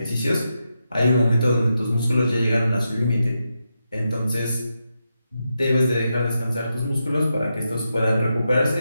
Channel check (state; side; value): inverted; both; correlation -0.86